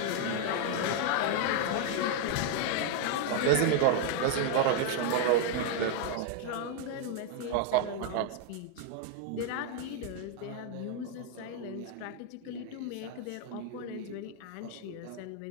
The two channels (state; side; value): different; both; correlation 0.00